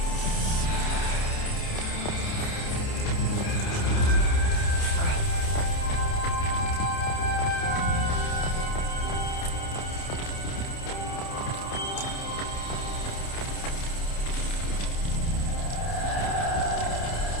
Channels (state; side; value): late; right; 29 ms